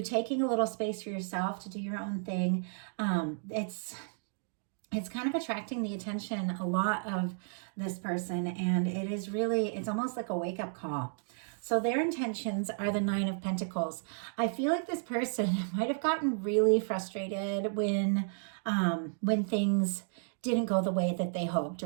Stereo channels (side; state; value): left; silent; digital silence